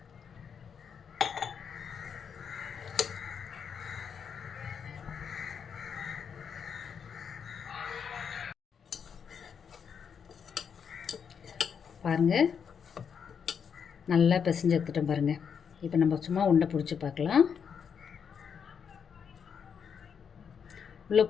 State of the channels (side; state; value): right; quieter; 7.0 dB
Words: பாருங்கள், நல்லா பிசைஞ்சு எடுத்துட்டோம் பாருங்கள். இப்போ நம்ம சும்மா உருண்டை பிடிச்சி பார்க்கலாம். உள்ளே